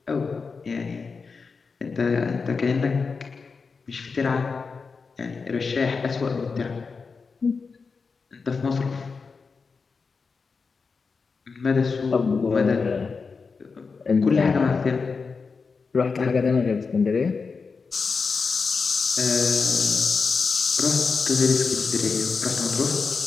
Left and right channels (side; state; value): right; quieter; 4.9 dB